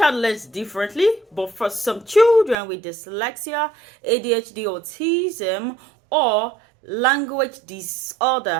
learns differently, but for some children with dyslexia, ADHD, autism, or language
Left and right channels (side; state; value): left; drops out; at 2.6 s